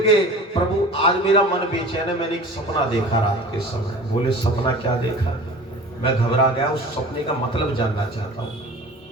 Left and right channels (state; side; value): normal; both; correlation 0.40